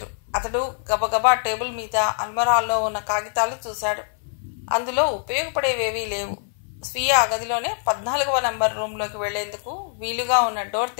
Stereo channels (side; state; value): right; silent; 60 dB below the other